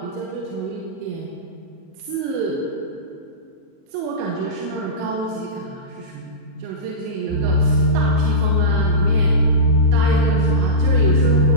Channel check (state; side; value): late; left; 37 ms